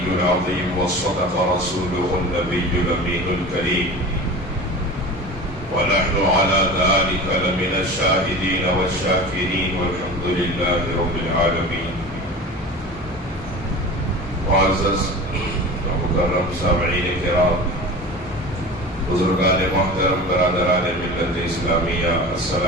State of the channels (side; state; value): both; normal; correlation 0.34